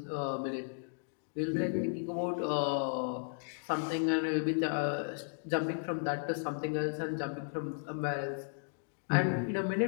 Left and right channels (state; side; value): silent; right; digital silence